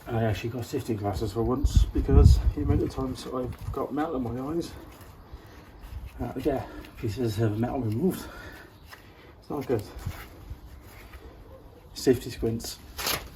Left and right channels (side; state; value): both; identical; correlation 1.00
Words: I actually got safety glasses for once because the amount of times I've got metal in my eyes, I had to get pieces of metal removed. It's not good. Safety squints